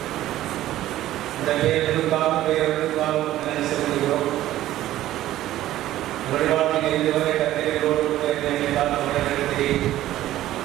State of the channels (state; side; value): quieter; left; 14.1 dB